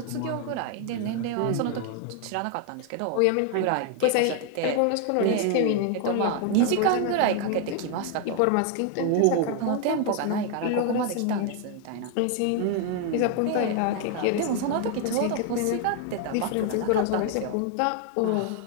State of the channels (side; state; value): both; different; correlation 0.00